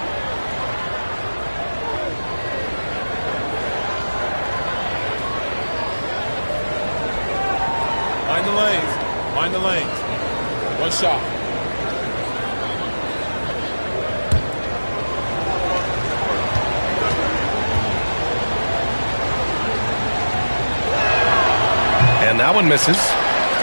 Mind the lanes. One shot. And that one misses.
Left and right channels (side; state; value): both; inverted; correlation -1.00